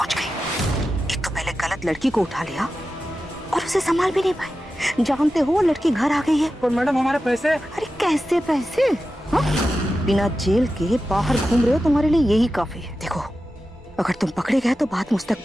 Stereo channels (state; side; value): normal; both; correlation 0.92